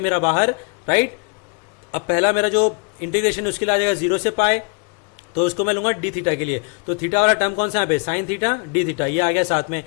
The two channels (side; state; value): right; quieter; 35.1 dB